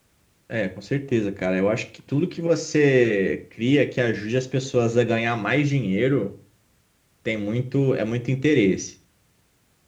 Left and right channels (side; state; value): both; identical; correlation 1.00